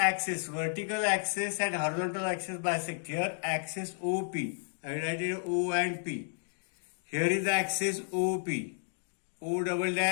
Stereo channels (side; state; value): right; silent; digital silence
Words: vertical axis and horizontal axis bisect. Here axis OP. I will write it O and P. Here is the axis OP. O double